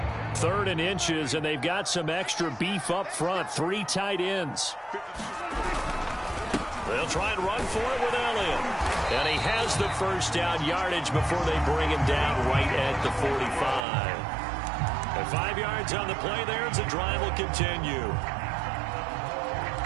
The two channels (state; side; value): drops out; left; at 13.8 s